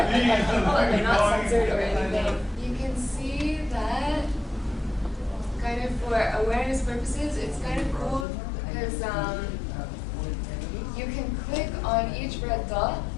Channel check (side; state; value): right; drops out; at 8.2 s